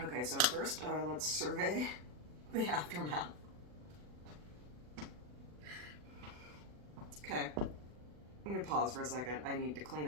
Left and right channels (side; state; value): left; late; 40 ms